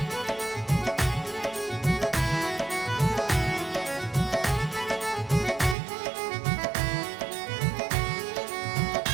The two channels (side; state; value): left; drops out; at 5.8 s